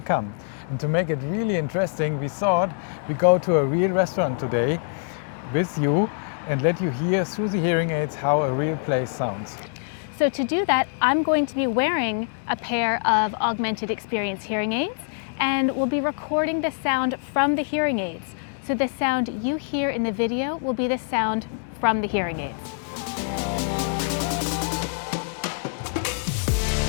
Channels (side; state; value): right; silent; digital silence